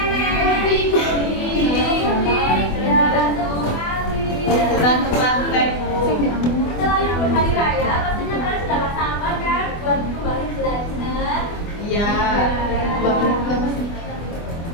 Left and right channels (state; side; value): late; right; 24 ms